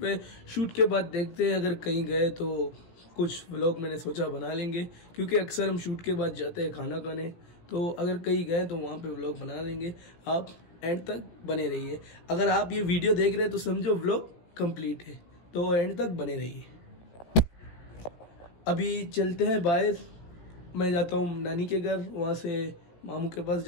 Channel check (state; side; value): late; right; 17 ms